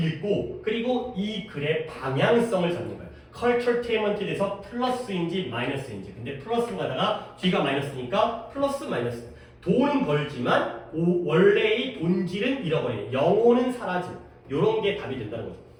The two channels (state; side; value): identical; both; correlation 1.00